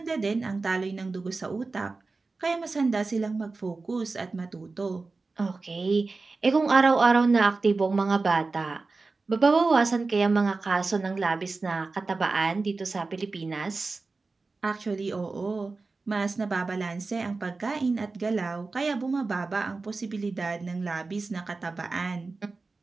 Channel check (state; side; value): quieter; left; 3.8 dB